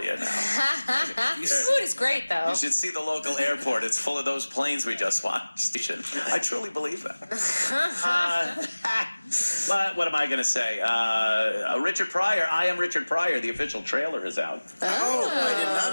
now. Food is great, though. You should see the local airport. It's full of those planes we just watched. I truly believe that. But what am I going to say? Richard Pryor. I Am Richard Pryor. The official trailer is out. Oh, I did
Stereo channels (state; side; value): inverted; both; correlation -1.00